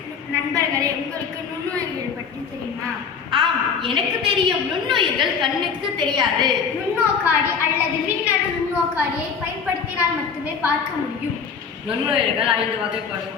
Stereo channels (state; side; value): quieter; right; 6.3 dB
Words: நண்பர்களே, உங்களுக்கு நுண்ணுயிர்கள் பற்றி தெரியுமா? ஆம், எனக்கு தெரியும். நுண்ணுயிர்கள் கண்ணுக்கு தெரியாது. நுண்ணோக்காடி அல்லது மின்னணு நுண்ணோக்காடியை பயன்படுத்தினால் மட்டுமே பார்க்க முடியும். நுண்ணுயிர்கள் 5 வகைப்படும்.